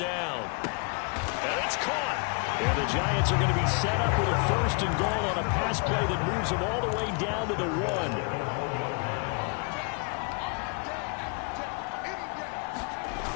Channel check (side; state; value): right; quieter; 34.2 dB